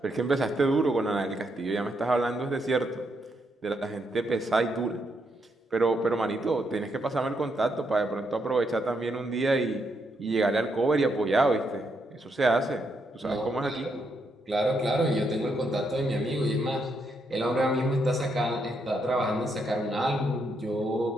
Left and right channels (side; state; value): both; normal; correlation 0.78